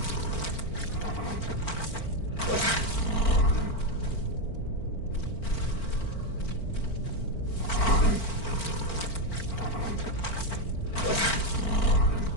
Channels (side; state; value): right; late; 4.4 ms